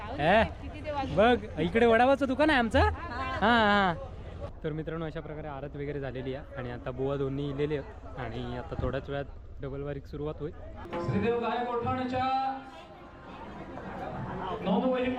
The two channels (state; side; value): identical; both; correlation 1.00